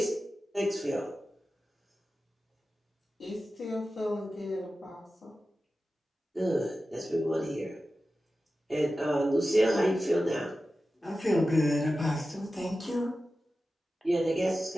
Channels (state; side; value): normal; both; correlation 0.94